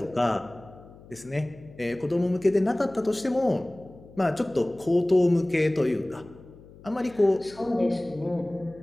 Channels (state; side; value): noise; left; hum, 21 dB below the sound